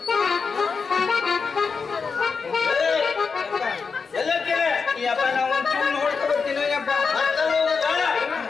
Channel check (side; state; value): right; quieter; 5.2 dB